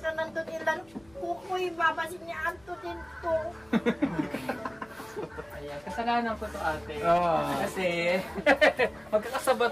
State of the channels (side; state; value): left; noise; hum, 28 dB below the sound